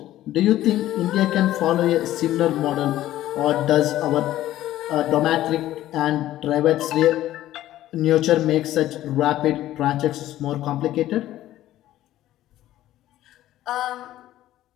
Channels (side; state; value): right; quieter; 14.0 dB